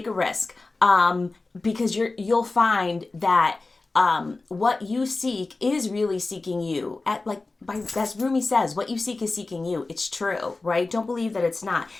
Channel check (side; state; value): right; quieter; 3.5 dB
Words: a risk, because you'll find that what you seek is really seeking you. As Rumi says, what you seek is seeking you. It's true, right? Don't believe that it's not.